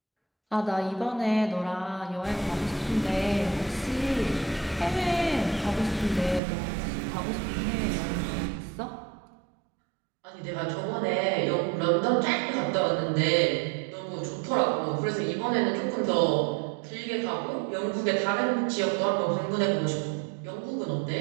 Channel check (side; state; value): left; drops out; at 6.4 s